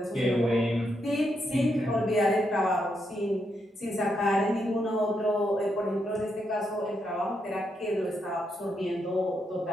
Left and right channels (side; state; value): both; normal; correlation 0.80